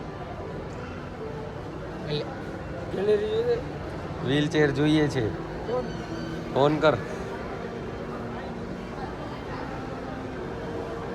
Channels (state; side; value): identical; both; correlation 1.00